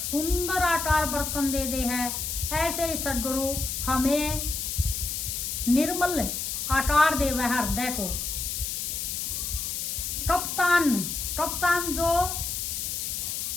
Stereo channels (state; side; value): noise; left; hiss, 3 dB below the sound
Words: आकार बर्तन दे दे है, ऐसे ही सतगुरु हमें निर्मल आकार देवे है हृदय को। कप्तान